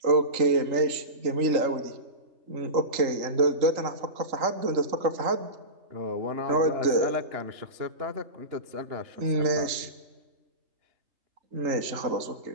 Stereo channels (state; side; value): late; left; 3.8 ms